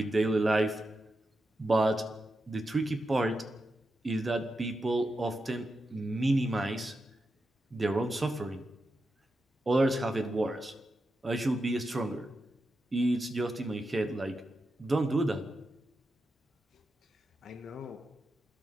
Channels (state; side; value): normal; both; correlation 0.88